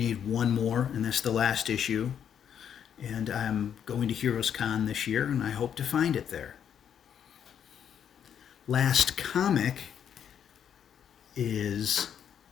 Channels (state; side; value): quieter; right; 8.7 dB